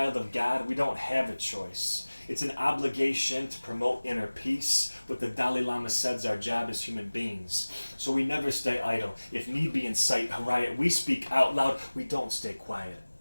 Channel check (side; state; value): both; inverted; correlation -1.00